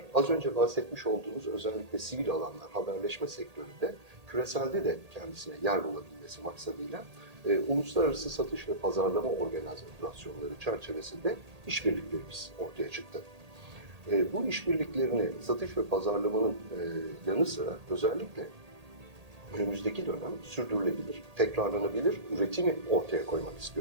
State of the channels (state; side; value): late; left; 1.8 ms